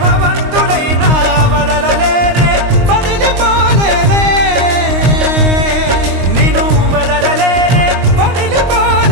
భవంతులైనా వదలలేనే వదిలిపోలేనే నిను వదలలేనే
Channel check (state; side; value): late; left; 22 ms